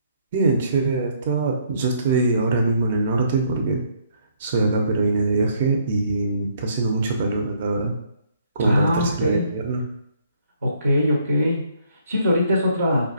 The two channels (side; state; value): both; inverted; correlation -0.67